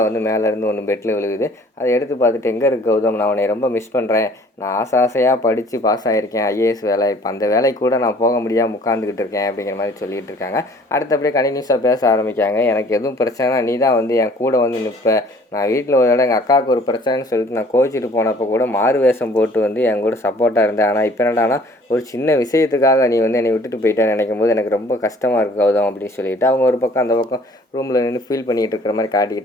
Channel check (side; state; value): both; normal; correlation 0.54